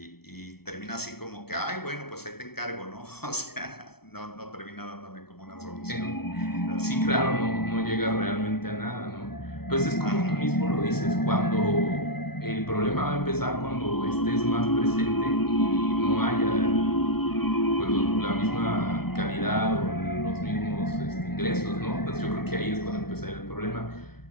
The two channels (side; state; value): right; late; 0.95 ms